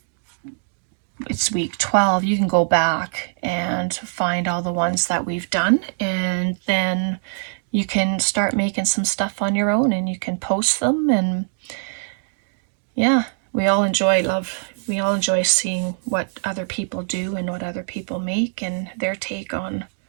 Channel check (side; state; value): left; silent; 58 dB below the other